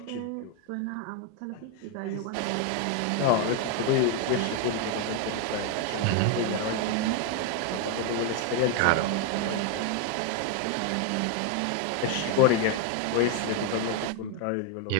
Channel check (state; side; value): different; both; correlation 0.01